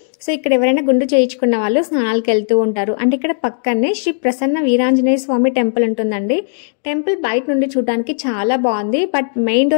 సో ఇక్కడ ఎవరైనా గుండు చేయించుకున్న వాళ్ళు స్నానాలకు వెళ్తూ ఉంటారు. అంటే ఇక్కడ పక్కనే శ్రీ ప్రసన్న వీరాంజనేయ స్వామి టెంపుల్ ఉంటుందండి. టెంపుల్ బయట నుండి చూడడానికి చాలా బాగుంది. బట్ మెయిన్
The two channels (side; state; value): right; silent; digital silence